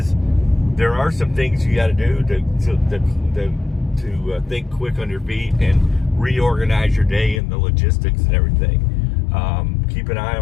there are some things you got to do to think quick on your feet and reorganize your day and the logistics and everything. Keep an eye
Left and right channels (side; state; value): right; drops out; at 7.4 s